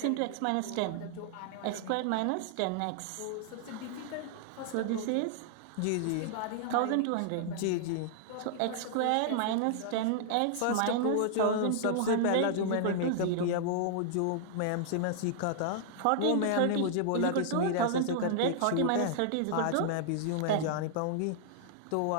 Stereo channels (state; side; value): different; both; correlation -0.01